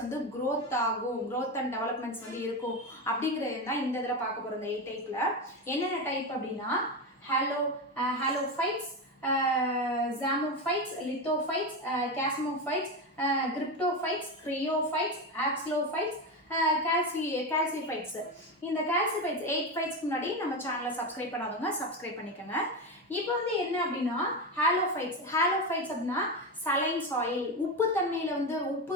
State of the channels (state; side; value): normal; both; correlation 0.16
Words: வந்து க்ரோத் ஆகும், க்ரோத் அண்ட் டெவலப்மெண்ட்ஸ் வந்து இருக்கும் அப்படிங்கிறது தான் இந்த இதில் பார்க்க போகிறோம். இந்த 8 டைப்பில் என்னென்ன டைப் அப்படின்னா ஹாலோஃபைட்ஸ், ஜாமோஃபைட்ஸ், லித்தோஃபைட்ஸ், கேஸ்மோஃபைட்ஸ், கிரிப்டோஃபைட்ஸ், கிரையோஃபைட்ஸ், ஆக்ஸ்லோஃபைட்ஸ், கால்சிஃபைட்ஸ். இந்த கால்சிஃபைட்ஸ் 8 ஃபைட்ஸ்க்கு முன்னாடி நம்ம சேனலை சப்ஸ்கிரைப் பண்ணாதவங்க சப்ஸ்கிரைப் பண்ணிக்கோங்க. இப்போ வந்து என்ன அப்படின்னா ஹாலோஃபைட்ஸ் அப்படின்னா சலைன் சாயில், உப்புத்தன்மையில் வந்து